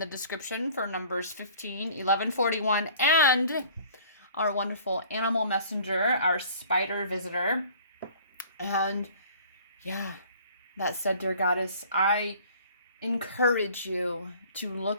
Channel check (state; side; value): inverted; both; correlation -0.50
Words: description for numbers 15, 11, 41, and our wonderful animal messenger, our spider visitor. And yeah, that said, dear Goddess, I encourage you to